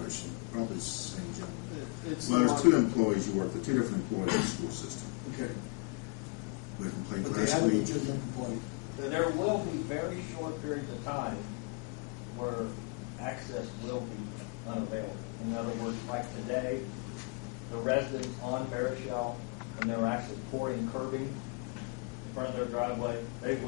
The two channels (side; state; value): right; quieter; 31.7 dB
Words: Probably it's the same gentleman. It's Well, there's two employees you work with, two different employees in the school system. Okay. We complained But they last have a week. legitimate complaint. There will be very short periods of time where access will be unavailable. In other words, like today, the residents on Barishel, when they're actually pouring curbing in front of their driveway, they